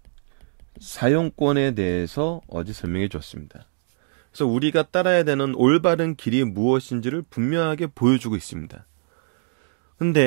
사용권에 대해서 어제 설명해 줬습니다. 그래서 우리가 따라야 되는 올바른 길이 무엇인지를 분명하게 보여주고 있습니다.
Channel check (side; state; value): left; silent; digital silence